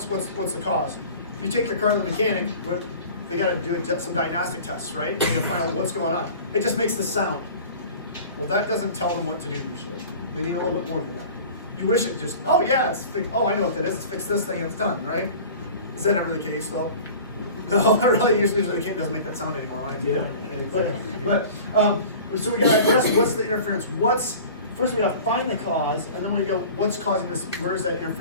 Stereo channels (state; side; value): inverted; both; correlation -0.41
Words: the cause. If you take your car to the mechanic, they gotta do some diagnostic tests, right? To find out what's going on. It just makes the sound. Well, that doesn't tell them what to do usually. They need a little bit more than that. You wish it just, oh yeah, it's fixed. Oh, I know what that is. It's fix this thing and it's done, right? Is that ever the case though? No, really, usually the mechanic doesn't make that sound anymore. Right? So we gotta address what's the interference. First we gotta find the cause, and then we go, what's causing this? Where is that